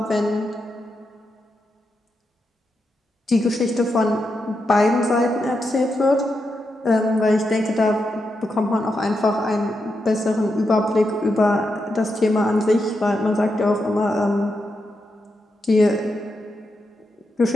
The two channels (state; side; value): normal; both; correlation 0.85